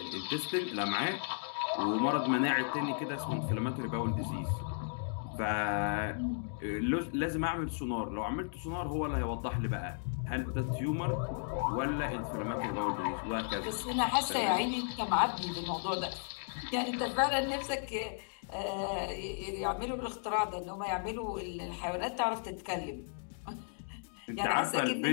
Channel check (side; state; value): right; silent; digital silence